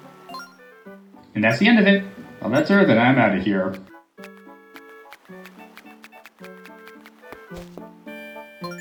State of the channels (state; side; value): identical; both; correlation 1.00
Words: And that's the end of it. Well, that's her, then I'm out of here.